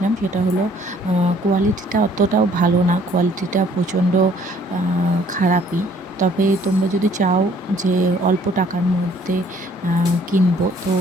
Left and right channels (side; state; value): both; normal; correlation 0.60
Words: সেটা হলো কোয়ালিটিটা অতটাও ভালো না, কোয়ালিটিটা প্রচণ্ড খারাপই। তবে তোমরা যদি চাও যে অল্প টাকার মধ্যে কিনবো, তো